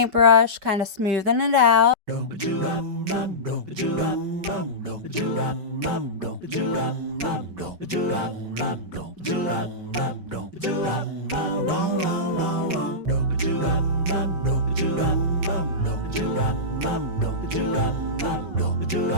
kind of smoothing it out.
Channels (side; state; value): left; late; 5.3 ms